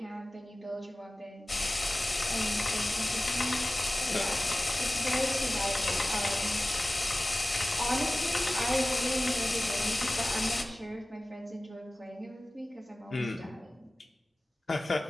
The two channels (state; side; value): normal; both; correlation 0.97